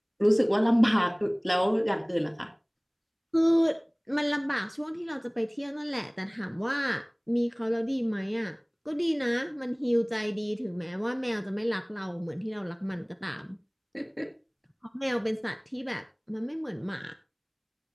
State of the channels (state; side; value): identical; both; correlation 1.00